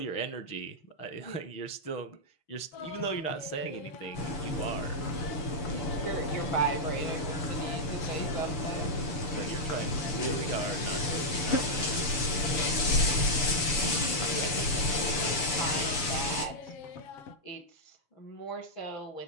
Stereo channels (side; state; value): right; late; 6.8 ms